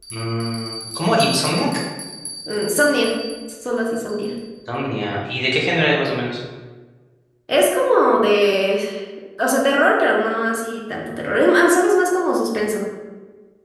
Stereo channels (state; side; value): identical; both; correlation 1.00